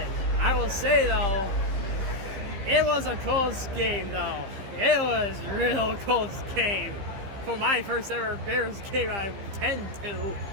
I will say, though, it was a close game, though. It was a real close game. For my first ever Bears game I attend to.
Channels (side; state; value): left; late; 15 ms